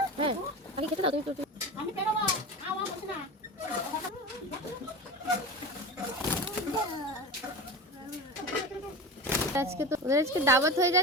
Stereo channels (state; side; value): normal; both; correlation 0.28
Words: হ্যাঁ বাকি খেতে দাও। তুমি আমি বেরোবো, খাওয়া হচ্ছে না। আজকে তো ওদের আজকে দাওয়াত হয়ে